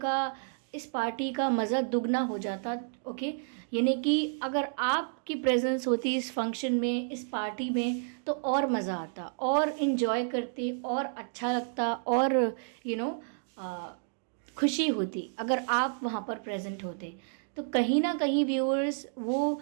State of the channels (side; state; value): left; silent; digital silence